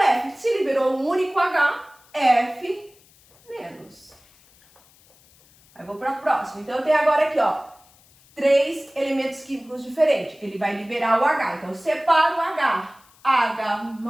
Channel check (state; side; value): noise; left; hiss, 29 dB below the sound